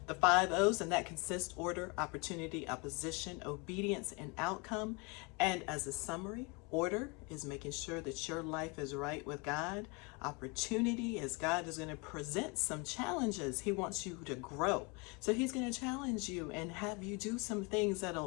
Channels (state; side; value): quieter; right; 29.7 dB